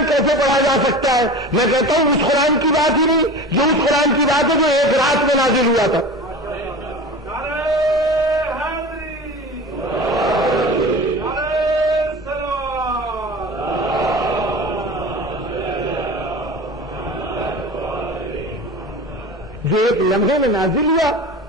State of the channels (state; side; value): normal; both; correlation 0.34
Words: کیسے پڑھا جا سکتا ہے؟ میں کہتا ہوں اس قرآن کی بات ہی نہیں، جو اس قرآن کی بات ہے جو ایک رات میں نازل ہوا تھا۔ جو ایک لمحے میں نازل ہوا